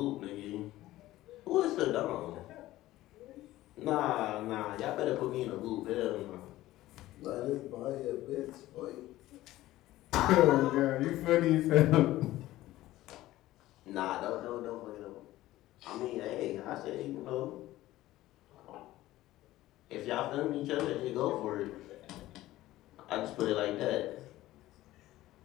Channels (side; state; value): right; quieter; 16.0 dB